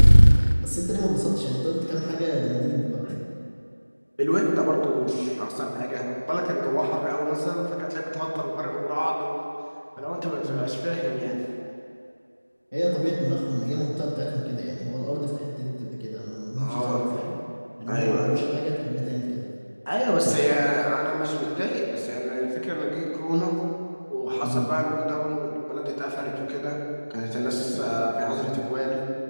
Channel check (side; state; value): both; inverted; correlation -1.00